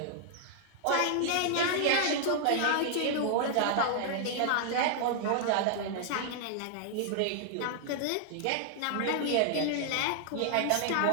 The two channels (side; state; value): both; different; correlation 0.00